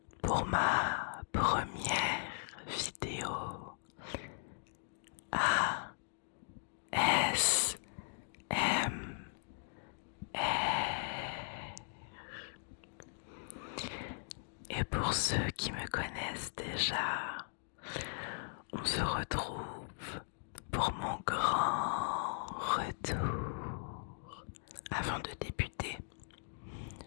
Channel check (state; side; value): silent; right; digital silence